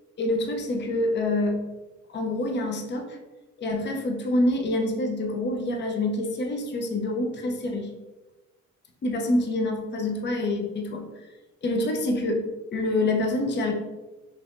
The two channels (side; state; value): both; normal; correlation 0.44